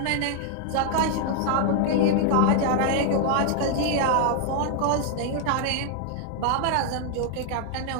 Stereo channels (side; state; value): both; different; correlation 0.00